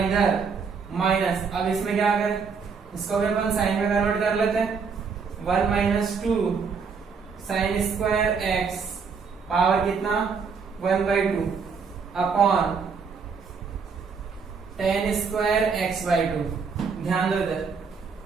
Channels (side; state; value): left; quieter; 5.5 dB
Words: इधर माइनस, अब इसमें क्या करें, इसको भी अपन साइन में कन्वर्ट कर लेते हैं, 1 minus 2 sign square x power कितना 1/2 अपॉन tan स्क्वायर x/2। ध्यान दो इधर